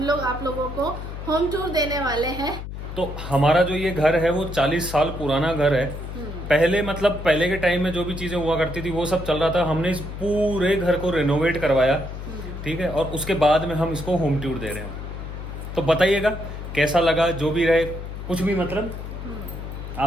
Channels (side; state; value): left; noise; hum, 8 dB below the sound